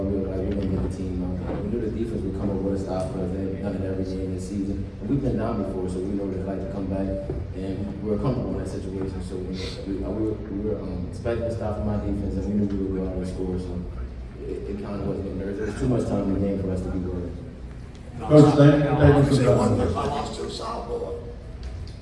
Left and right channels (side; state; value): both; identical; correlation 1.00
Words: we were like, we're going to get the team out. We knew the defense would come up with a stop for us. They've done it every game this season. And we've been down before, so we know what it's like to come back. And we were comfortable in that situation. So we were expecting a stop from my defense, and we knew we would go out and score. So it kind of wasn't getting nervous. There was too much time in the game for us to be worried. Coach, thank you for I that. lost to a sophomore.